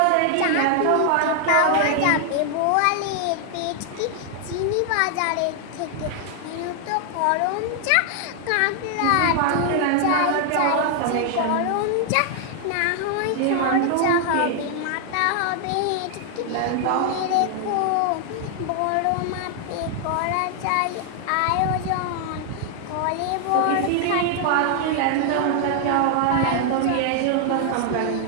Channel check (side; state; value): both; different; correlation 0.00